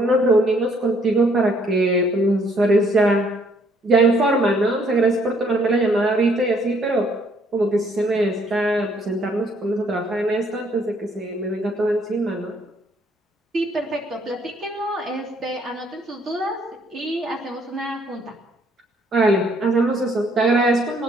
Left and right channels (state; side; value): normal; both; correlation 0.65